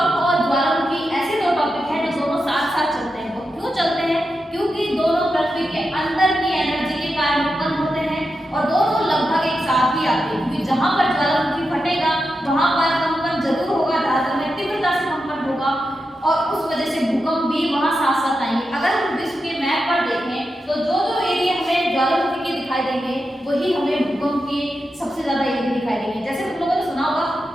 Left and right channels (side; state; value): both; normal; correlation 0.88